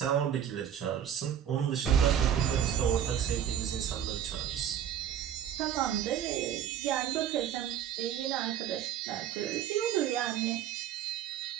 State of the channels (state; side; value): quieter; left; 9.7 dB